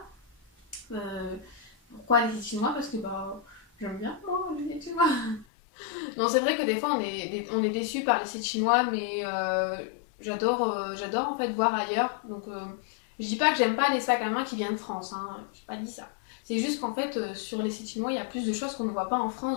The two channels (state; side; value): drops out; right; at 5.5 s